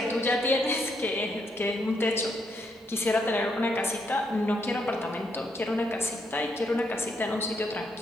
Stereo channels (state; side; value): normal; both; correlation 0.76